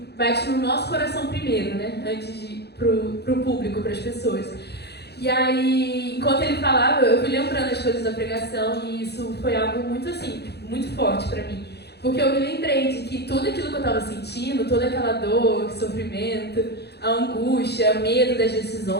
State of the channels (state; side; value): late; right; 0.48 ms